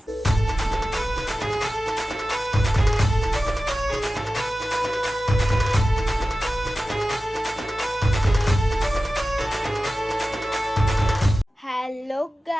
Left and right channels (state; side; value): normal; both; correlation 0.94